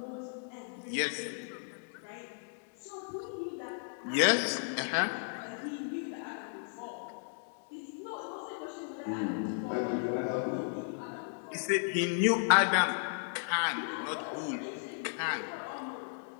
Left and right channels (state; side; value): silent; right; digital silence